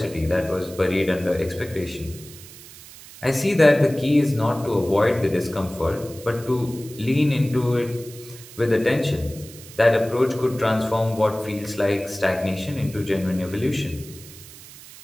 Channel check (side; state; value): right; noise; hiss, 18 dB below the sound